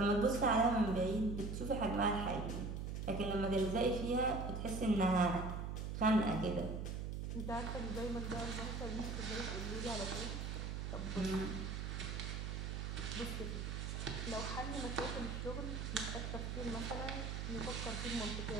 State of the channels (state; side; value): noise; right; hum, 3 dB below the sound